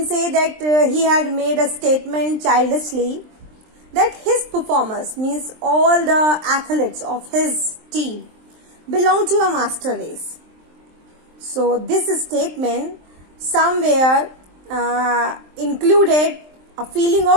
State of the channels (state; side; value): late; left; 23 ms